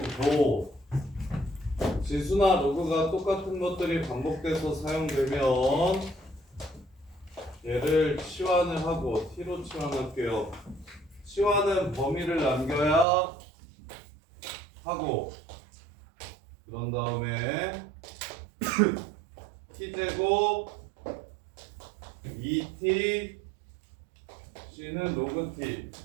지수나 로그가 똑같은 것들이 반복돼서 사용되면 얘를 치환을 하고 T로 치환할게요. 치환은 범위를 남겨야 하고 그런 다음에 T제곱 2T C는 로그 T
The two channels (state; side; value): drops out; left; at 13.1 s